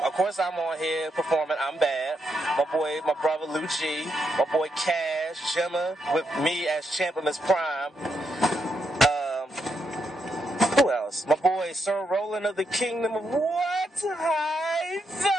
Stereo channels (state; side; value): normal; both; correlation 0.80